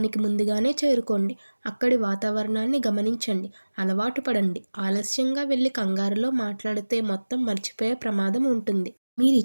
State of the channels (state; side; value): inverted; both; correlation -1.00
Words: ముందుగానే చేరుకోండి. అక్కడి వాతావరణాన్ని గమనించండి. అలవాటు పడండి. ఆలస్యంగా వెళ్ళి కంగారులో మాట్లాడితే మొత్తం మర్చిపోయే ప్రమాదం ఉంటుంది.